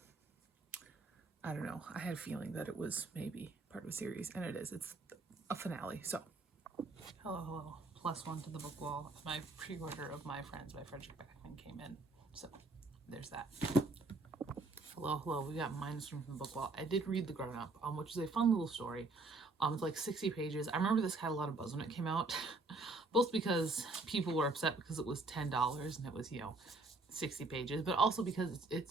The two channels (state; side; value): quieter; left; 3.4 dB